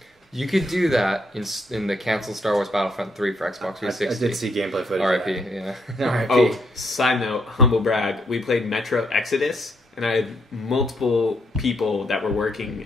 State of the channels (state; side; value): normal; both; correlation 0.74